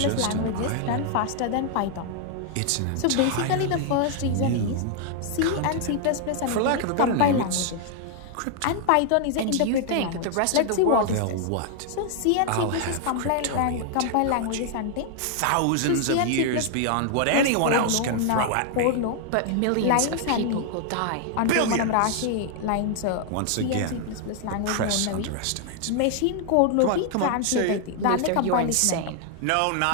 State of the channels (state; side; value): different; both; correlation 0.00